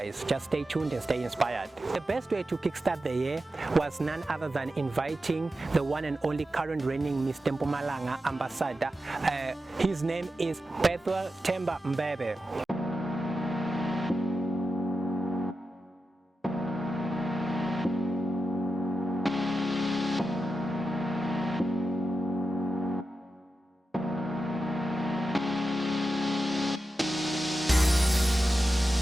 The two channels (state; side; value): normal; both; correlation 0.90